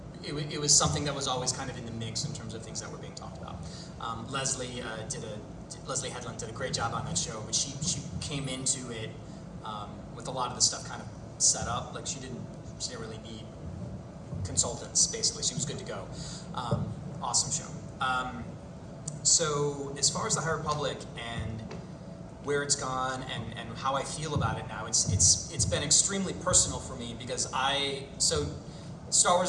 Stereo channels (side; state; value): both; identical; correlation 1.00